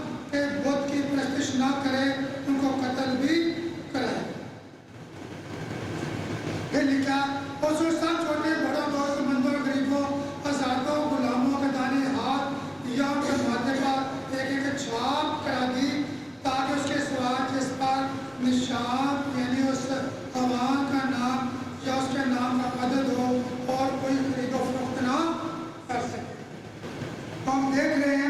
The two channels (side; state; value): both; identical; correlation 1.00